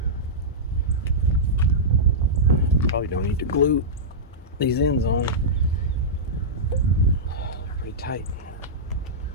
Probably don't need to glue these ends on. Pretty tight.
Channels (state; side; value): normal; both; correlation -0.13